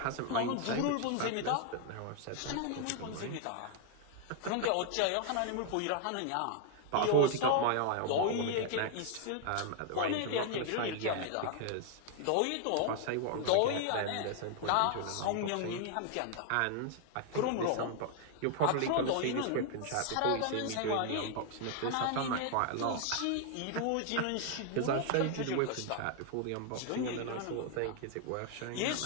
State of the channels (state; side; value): different; both; correlation 0.00